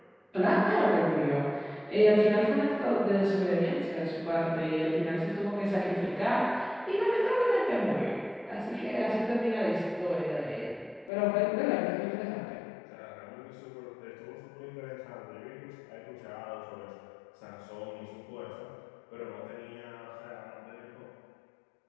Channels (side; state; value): right; drops out; at 11.1 s